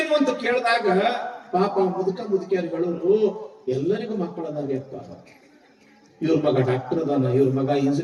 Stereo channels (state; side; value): identical; both; correlation 1.00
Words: ಅಂತ ಕೇಳಿದಾಗ ಪಾಪ ಮುದುಕಿಯರುಗಳು ಎಲ್ಲರಿಗೂ ಮಕ್ಕಳದಾಗ್ಯಪ್ಪ. ಇವ್ರ ಮಗ ಡಾಕ್ಟರ್ ಅದಾನ, ಇವ್ರ ಮಗ